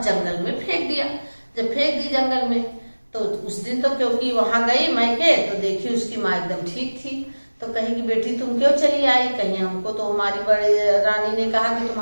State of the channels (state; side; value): inverted; both; correlation -1.00